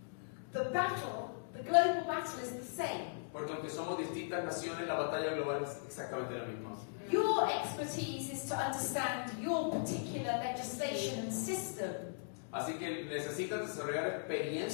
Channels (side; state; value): right; silent; digital silence